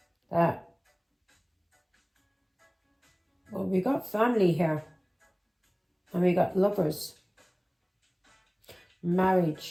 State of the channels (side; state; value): both; identical; correlation 1.00